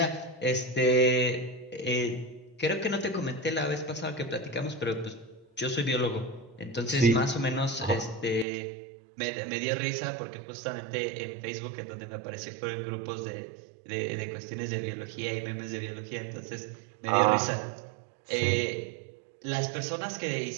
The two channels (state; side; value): drops out; left; at 8.5 s